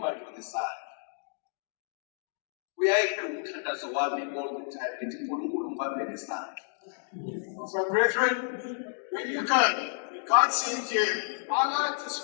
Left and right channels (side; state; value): right; silent; digital silence